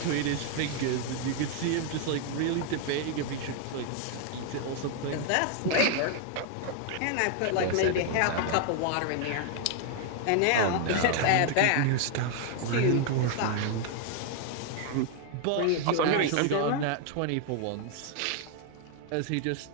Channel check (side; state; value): both; different; correlation 0.00